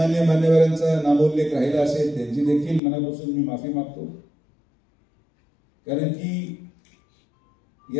मान्यवरांचा नामोल्लेख राहिला असेल त्यांची देखील मनापासून मी माफी मागतो. कारण की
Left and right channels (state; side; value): drops out; right; at 2.8 s